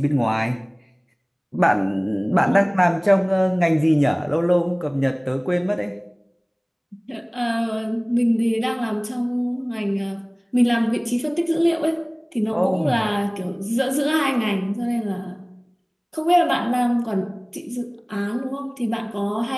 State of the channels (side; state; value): both; identical; correlation 1.00